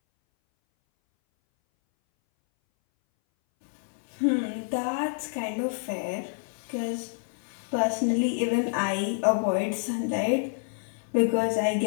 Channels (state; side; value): silent; right; 59 dB below the other